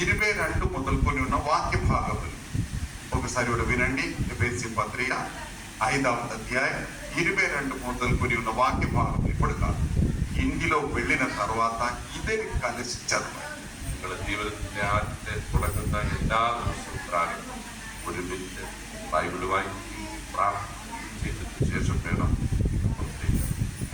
22 మొదలుకొని ఉన్న వాక్య భాగములు ఒకసారి కూడా వినండి. ఎఫెసీ పత్రిక 5వ అధ్యాయం 22 మొదలుకొని ఉన్న వాక్య భాగం ఇప్పుడు కాదు, ఇంటిలో వెళ్ళిన తర్వాత ఇద్దరి కలిసి చదవాలి. നിങ്ങളുടെ ജീവിതത്തിന്റെ ആദ്യത്തെ തുടങ്ങുന്ന എല്ലാ ദിവസവും പ്രാർത്ഥന ഒരുമിച്ച് ബൈബിൾ വായിക്കുകയും പ്രാർത്ഥിക്കുകയും ചെയ്തതിനു ശേഷം വേണം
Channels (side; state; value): both; identical; correlation 1.00